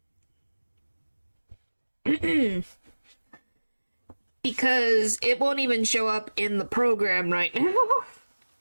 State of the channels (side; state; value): both; inverted; correlation -1.00